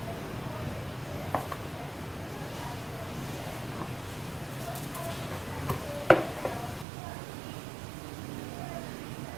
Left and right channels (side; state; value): left; drops out; at 6.9 s